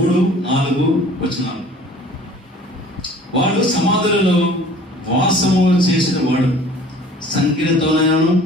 వచనాలు. వాడు సమాధులలో వాసము చేసిన వాడు సంఖ్యలతోనైనను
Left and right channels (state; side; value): normal; both; correlation 0.49